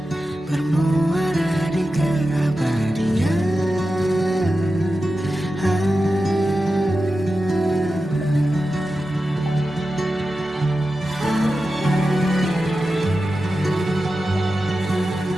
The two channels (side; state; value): both; normal; correlation 0.92